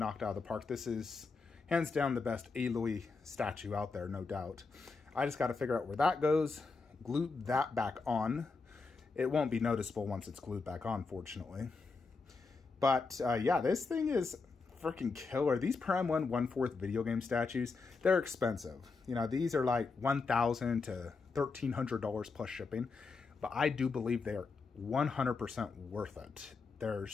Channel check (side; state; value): right; quieter; 4.3 dB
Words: out of the park. This is hands down the best Aloy statue out there, no doubt. I just got to figure out where that goes. Glue that back on. It won't be noticeable once it's glued back on, fortunately. But yeah, this thing is freaking killer. These Prime 1 1/4 video game statues, they're expensive. You know, these are like $1,000 to $1,300 plus shipping. But I do believe they are 100% worth it. They're